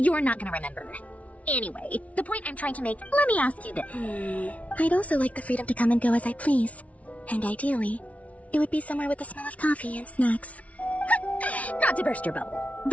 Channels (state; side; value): late; right; 0.067 ms